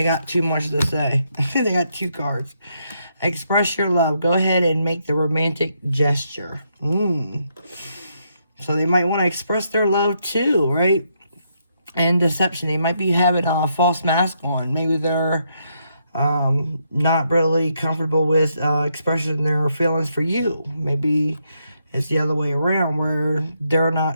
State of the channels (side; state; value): both; inverted; correlation -0.77